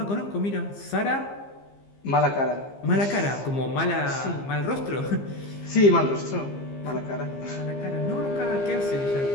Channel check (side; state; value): right; late; 15 ms